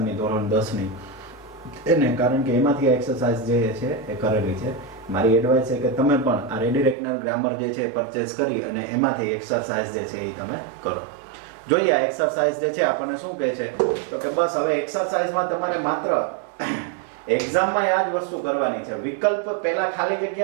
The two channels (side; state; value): left; drops out; at 7.0 s